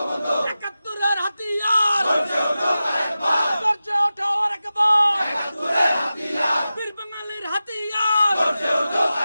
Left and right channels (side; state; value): both; inverted; correlation -0.94